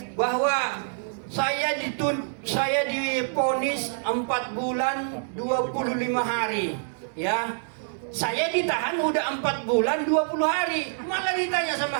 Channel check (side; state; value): left; silent; digital silence